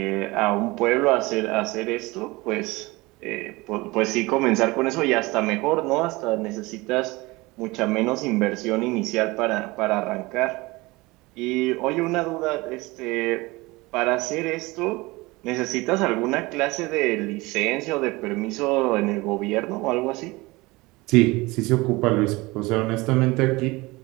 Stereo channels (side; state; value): left; quieter; 22.5 dB